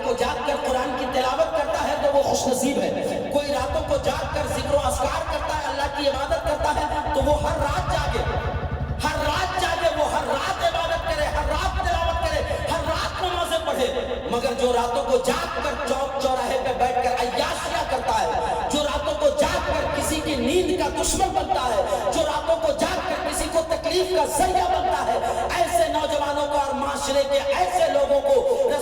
کو جاگ کر قرآن کی تلاوت کرتا ہے تو وہ خوش نصیب ہے، کوئی راتوں کو جاگ کر ذکر و اذکار کرتا ہے، اللہ کی عبادت کرتا ہے، تو وہ ہر رات جاگے، ہر رات جاگے، وہ ہر رات عبادت کرے، ہر رات تلاوت کرے، ہر رات نمازیں پڑھے۔ مگر جو راتوں کو جاگ کر چوک چوراہے پہ بیٹھ کر عیاشیاں کرتا ہے، جو راتوں کو جاگ کر کسی کی نیند کا دشمن بنتا ہے، جو راتوں کو جاگ کر کسی کو تکلیف کا ذریعہ بنتا ہے، ایسے نوجوانوں کو اور معاشرے کے ایسے لوگوں کو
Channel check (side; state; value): both; identical; correlation 1.00